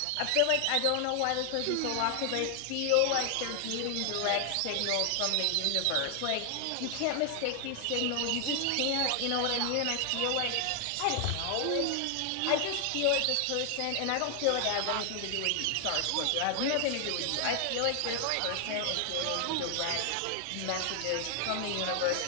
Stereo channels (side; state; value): both; different; correlation 0.00